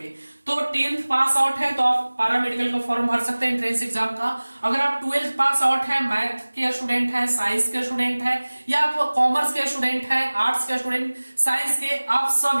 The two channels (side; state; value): both; inverted; correlation -1.00